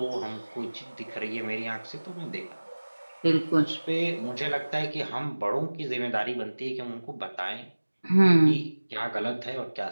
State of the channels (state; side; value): inverted; both; correlation -1.00